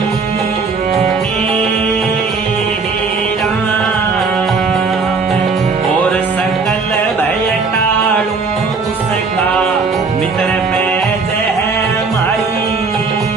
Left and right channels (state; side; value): quieter; left; 4.5 dB